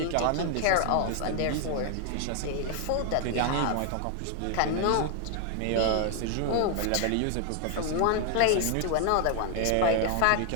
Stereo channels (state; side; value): different; both; correlation 0.00